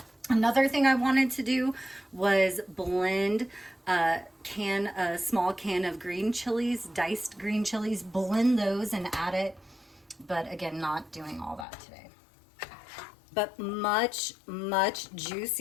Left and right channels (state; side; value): drops out; right; at 11.7 s